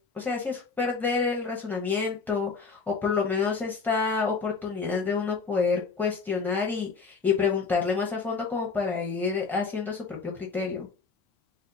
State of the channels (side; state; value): right; quieter; 4.9 dB